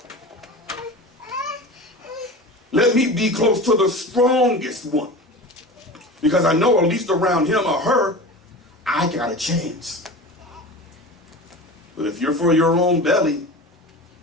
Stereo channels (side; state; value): both; normal; correlation 0.33